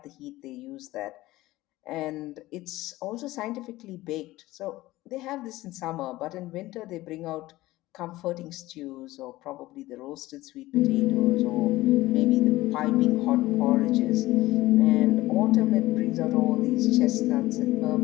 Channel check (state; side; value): quieter; right; 17.7 dB